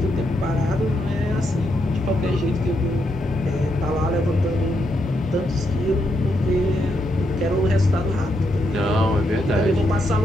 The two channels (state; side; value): normal; both; correlation 0.80